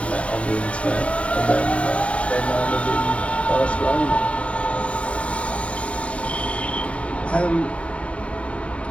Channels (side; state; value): right; late; 0.064 ms